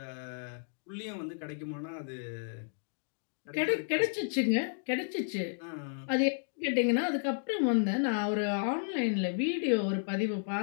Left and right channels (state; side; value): silent; right; digital silence